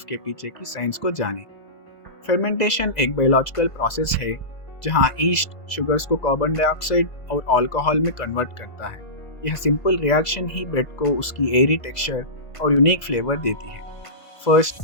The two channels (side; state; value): right; late; 1.5 ms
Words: के पीछे की साइंस को जानें। फर्मेंटेशन एक बायोलॉजिकल प्रोसेस है, जहां ईस्ट शुगर्स को कार्बन डाइऑक्साइड और अल्कोहल में कन्वर्ट करता है। यह सिंपल रिएक्शन ही ब्रेड को उसकी एयरी टेक्सचर और यूनिक फ्लेवर देती है। फर्स्ट,